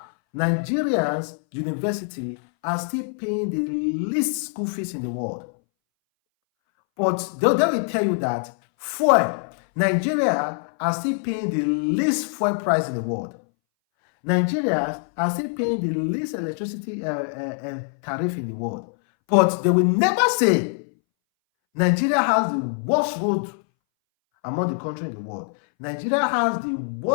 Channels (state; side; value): silent; right; 62 dB below the other